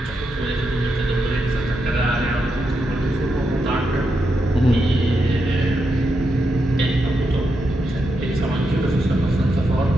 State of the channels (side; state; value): both; normal; correlation 0.84